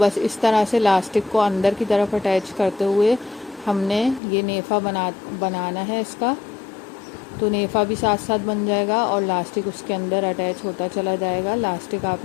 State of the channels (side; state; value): right; drops out; at 4.2 s